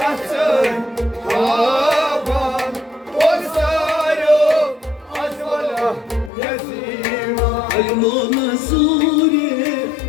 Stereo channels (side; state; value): right; drops out; at 6.3 s